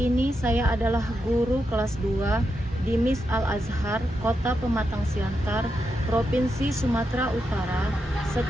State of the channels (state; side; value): normal; both; correlation 0.85